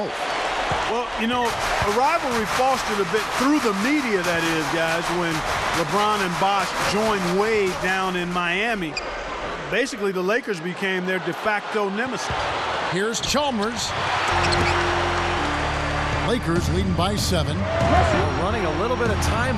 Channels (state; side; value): identical; both; correlation 1.00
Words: Well, you know, a rivalry fostered a bit through the media, that is, guys, when LeBron and Bosch joined Wade down in Miami. Basically, the Lakers became their de facto nemesis. Here's Chalmers. Lakers leading by 7. Well, running a little bit of